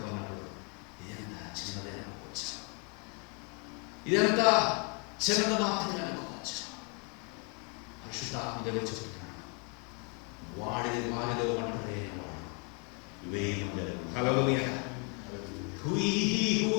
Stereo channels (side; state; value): right; quieter; 33.7 dB